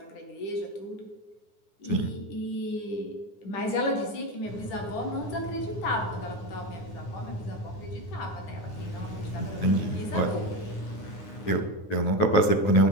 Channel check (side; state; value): right; late; 9.7 ms